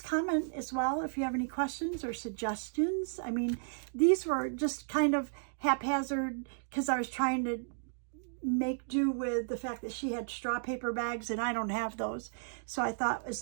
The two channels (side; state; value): left; silent; digital silence